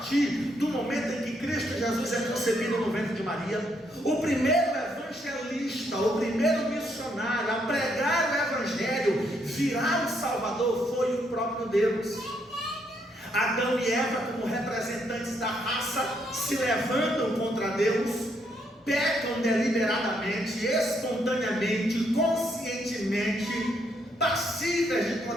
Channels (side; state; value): both; normal; correlation 0.74